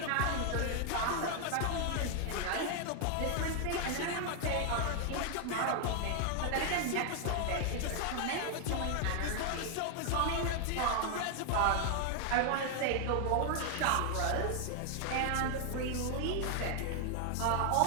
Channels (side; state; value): both; different; correlation 0.00